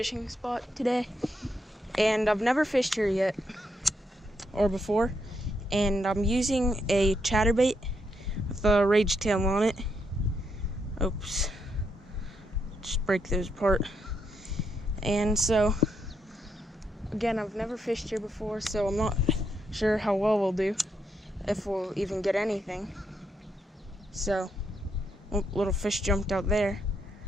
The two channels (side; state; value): both; normal; correlation 0.79